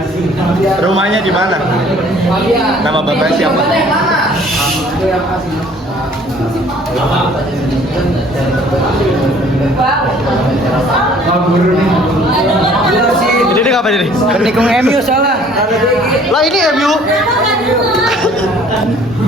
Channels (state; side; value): normal; both; correlation 0.55